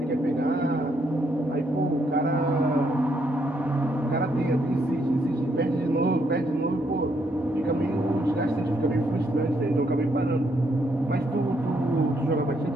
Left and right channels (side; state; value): both; normal; correlation 0.74